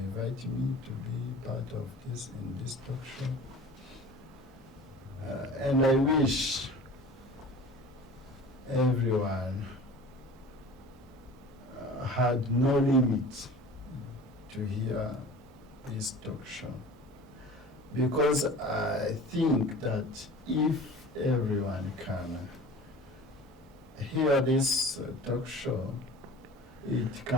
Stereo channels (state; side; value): normal; both; correlation 0.41